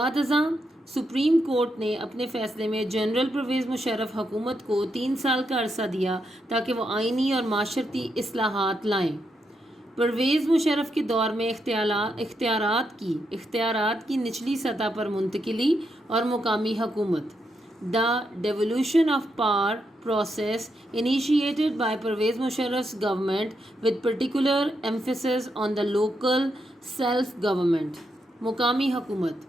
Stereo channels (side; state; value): both; normal; correlation 0.81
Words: ازاں سپریم کورٹ نے اپنے فیصلے میں جنرل پرویز مشرف حکومت کو 3 سال کا عرصہ دیا تاکہ وہ آئینی اور معاشرتی اصلاحات لائیں۔ پرویز مشرف کے دور میں اختیارات کی نچلی سطح پر منتقلی اور مقامی حکومت۔ The devolution of power process initiated by Pervez Musharraf's government with particular emphasis on the local self-government۔ مقامی حکومت